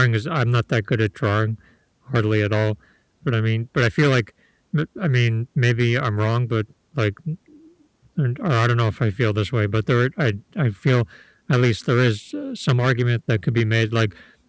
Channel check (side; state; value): both; identical; correlation 1.00